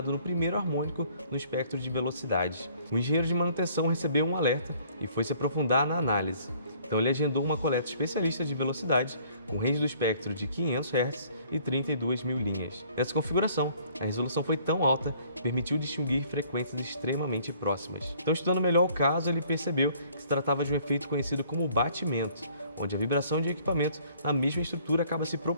no primeiro harmônico no espectro de velocidades. O engenheiro de manutenção recebeu um alerta e foi se aprofundar na análise. Então ele agendou uma coleta especialista de velocidade com range do espectro de 500 Hz e 32.000 linhas. Nessa configuração, a resolução foi tão alta que permitiu distinguir frequências extremamente próximas. Então, estudando melhor o caso, ele percebeu que se tratava de um efeito conhecido como batimento, onde a vibração de equipamentos na mesma estrutura acaba se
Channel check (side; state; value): both; inverted; correlation -0.58